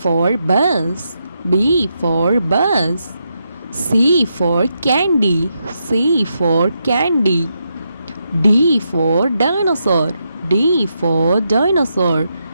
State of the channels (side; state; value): both; inverted; correlation -0.83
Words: bus. B for bus. C for candy. C for candy. D for dinosaur. D for dinosaur.